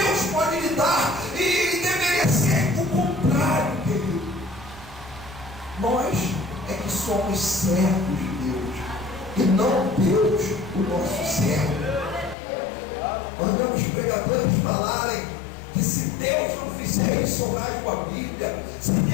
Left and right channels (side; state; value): right; drops out; at 12.4 s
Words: servos de Deus, e não Deus o nosso servo. Nós vemos pregadores falarem que se Deus não fizer isso, eu rasgo a Bíblia. Se